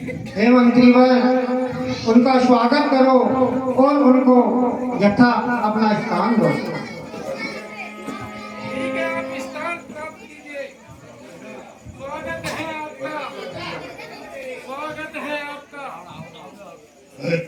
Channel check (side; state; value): both; identical; correlation 1.00